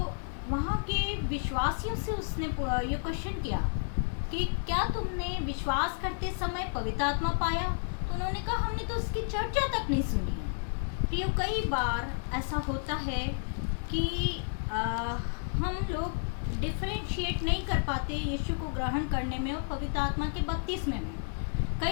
वहाँ के विश्वासियों से उसने ये क्वेश्चन किया कि क्या तुमने विश्वास करते समय पवित्र आत्मा पाया? तो उन्होंने कहा, हमने तो उसकी चर्चा तक नहीं सुनी है। प्रियो, कई बार ऐसा होता है कि हम लोग डिफरेंशिएट नहीं कर पाते यीशु को ग्रहण करने में और पवित्र आत्मा के बपतिस्मे में।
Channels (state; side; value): silent; right; 57 dB below the other